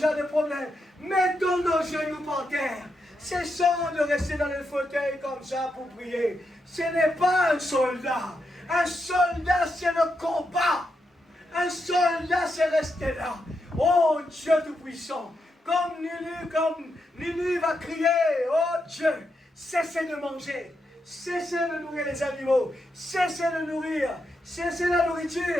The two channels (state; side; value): normal; both; correlation 0.84